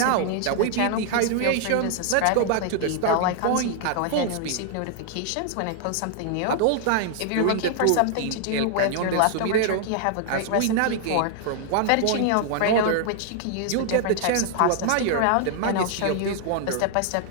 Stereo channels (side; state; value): both; different; correlation 0.00